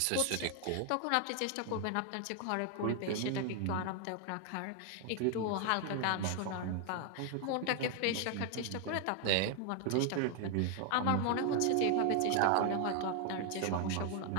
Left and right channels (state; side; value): different; both; correlation 0.00